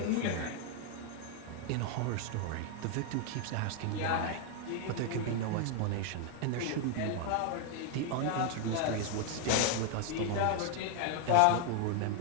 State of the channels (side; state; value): both; different; correlation 0.00